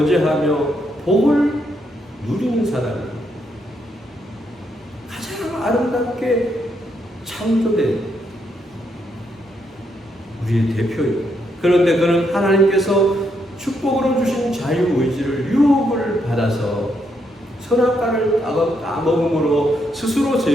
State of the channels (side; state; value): both; normal; correlation 0.77